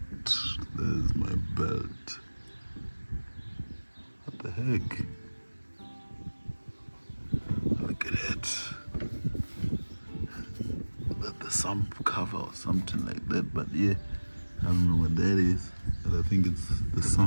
What the heck? Look at it. That the sump cover or something like that, but yeah, I don't know what that is, but I think it's the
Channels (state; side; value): inverted; both; correlation -1.00